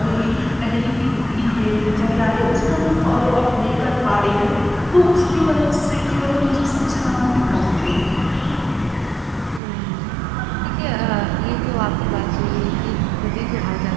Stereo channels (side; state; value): left; drops out; at 9.6 s